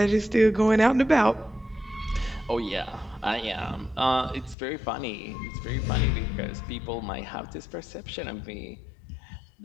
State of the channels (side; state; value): right; drops out; at 4.5 s